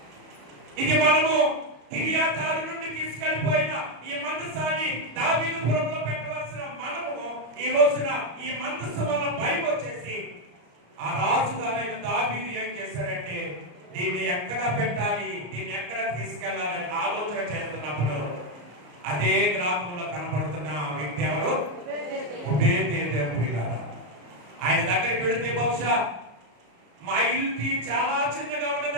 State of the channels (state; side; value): late; left; 34 ms